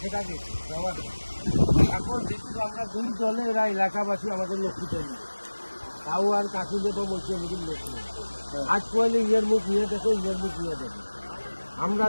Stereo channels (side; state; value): both; inverted; correlation -1.00